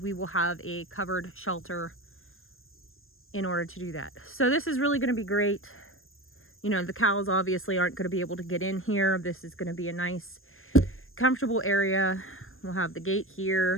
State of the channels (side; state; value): right; late; 0.60 ms